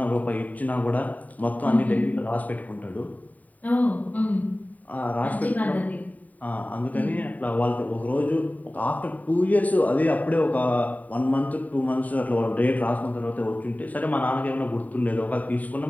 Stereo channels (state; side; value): late; right; 0.074 ms